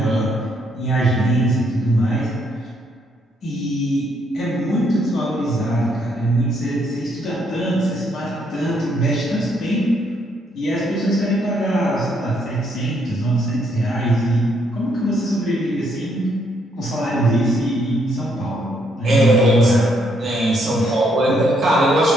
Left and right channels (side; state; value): both; normal; correlation 0.72